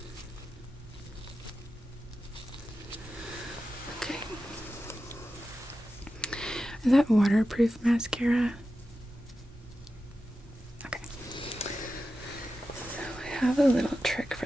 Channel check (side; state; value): both; normal; correlation 0.92